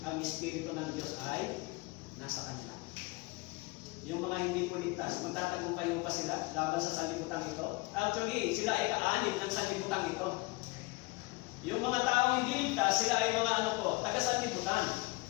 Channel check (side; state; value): right; quieter; 24.5 dB